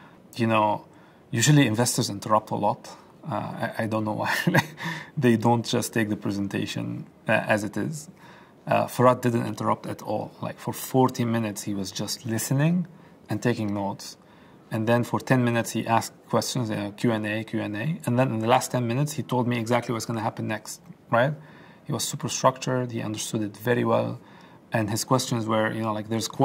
Usually investors interrupt a lot. I don't know why. They don't just take the presentation as it is. Firat didn't interrupt at all. Like, for 40 minutes, he was just listening and taking notes. And then for 10 minutes, he asked questions, Q&A. And then in the last 10 minutes, he told me exactly what's going to happen next, right? He was super structured. He understood it very well. And his questions were, there's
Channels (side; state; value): both; identical; correlation 1.00